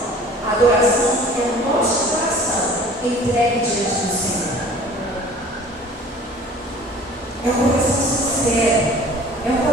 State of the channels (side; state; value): both; normal; correlation 0.47